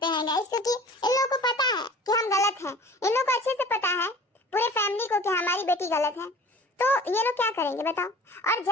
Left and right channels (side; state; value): both; normal; correlation 0.44